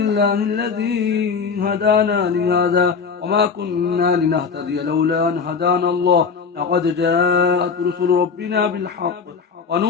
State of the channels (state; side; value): quieter; right; 5.6 dB